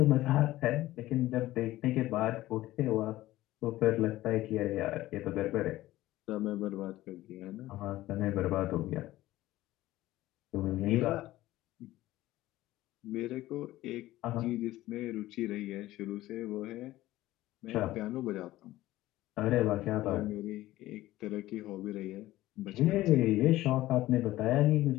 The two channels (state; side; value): quieter; right; 16.1 dB